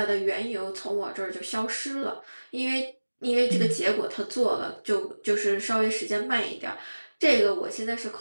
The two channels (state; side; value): inverted; both; correlation -1.00